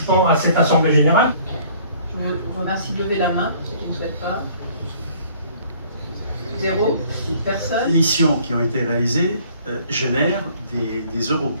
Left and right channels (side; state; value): both; inverted; correlation -0.56